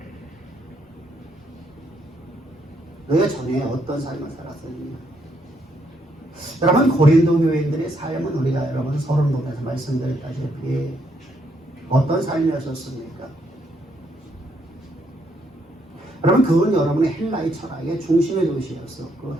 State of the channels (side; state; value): both; normal; correlation 0.74